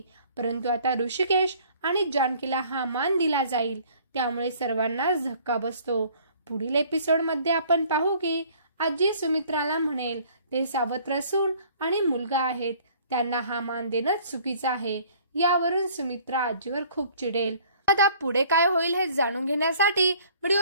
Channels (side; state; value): both; inverted; correlation -0.55